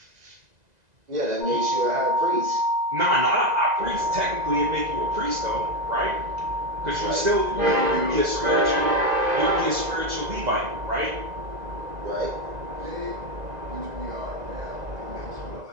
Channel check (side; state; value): left; late; 2.0 ms